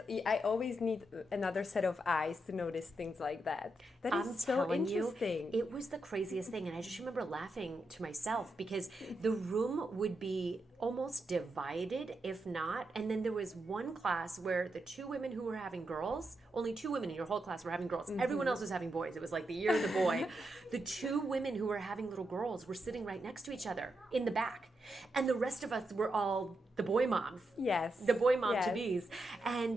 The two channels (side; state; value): both; normal; correlation 0.84